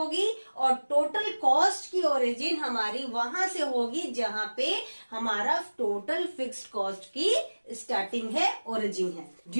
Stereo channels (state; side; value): inverted; both; correlation -1.00